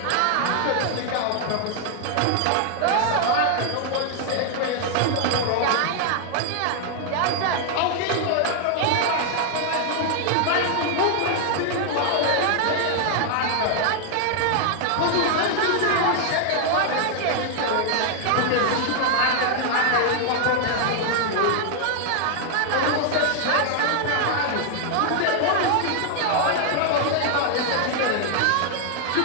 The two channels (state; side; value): different; both; correlation 0.00